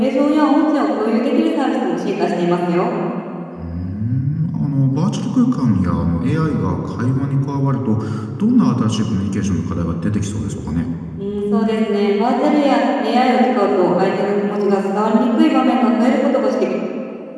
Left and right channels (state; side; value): identical; both; correlation 1.00